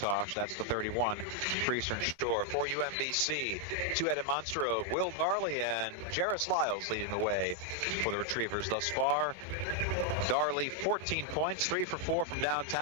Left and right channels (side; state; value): both; normal; correlation 0.00